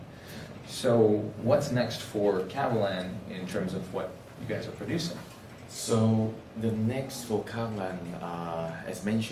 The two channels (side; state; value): both; identical; correlation 1.00